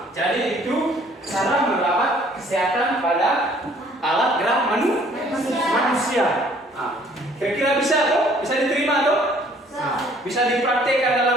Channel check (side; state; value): both; normal; correlation 0.58